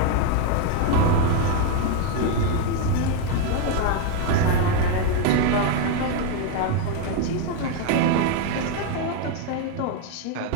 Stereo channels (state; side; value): different; both; correlation 0.01